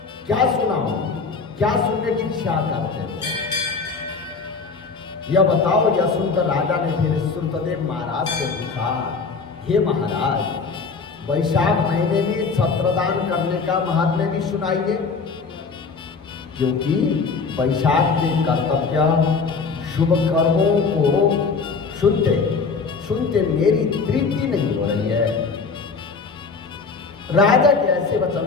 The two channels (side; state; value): right; quieter; 4.8 dB